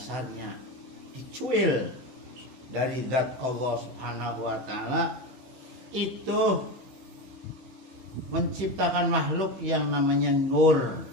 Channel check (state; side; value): late; left; 15 ms